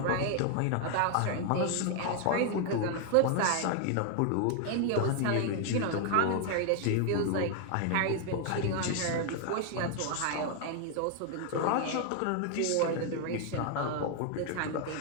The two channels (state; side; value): different; both; correlation 0.00